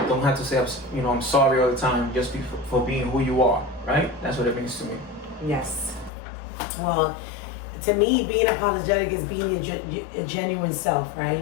don't have to say, I'm sorry all the time. Just be for being who you are, right? That's what it means to me. Yes. Well, to me, being apologetic is being a genuine self,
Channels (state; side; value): drops out; right; at 6.1 s